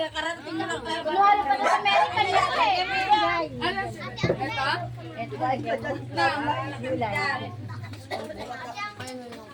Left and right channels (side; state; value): both; identical; correlation 1.00